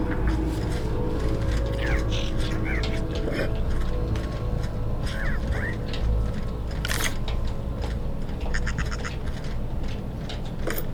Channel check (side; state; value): both; identical; correlation 1.00